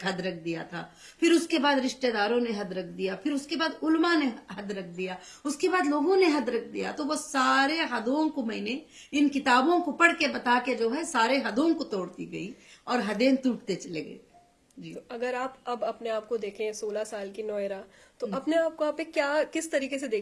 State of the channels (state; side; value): identical; both; correlation 1.00